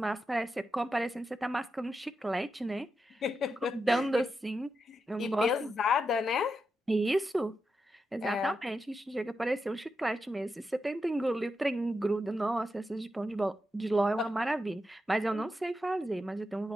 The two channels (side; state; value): both; normal; correlation 0.87